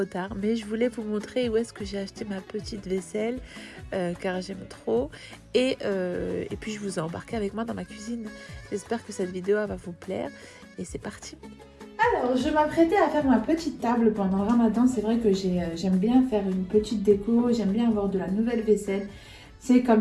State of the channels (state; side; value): identical; both; correlation 1.00